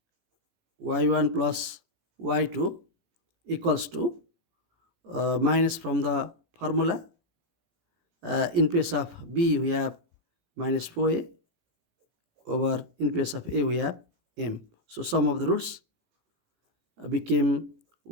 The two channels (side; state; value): left; late; 17 ms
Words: y1 plus y2 equals to minus from the formula. In place of b we have minus 4a over, in place of a we have m. So sum of the roots became